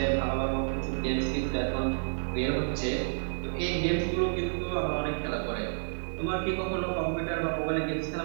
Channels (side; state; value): left; silent; digital silence